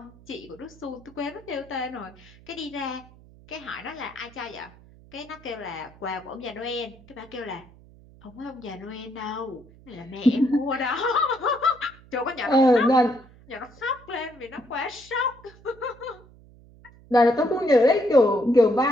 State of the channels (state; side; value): noise; right; hum, 24 dB below the sound